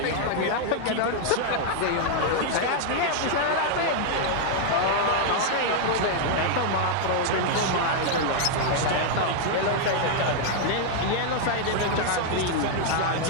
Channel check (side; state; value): both; different; correlation 0.00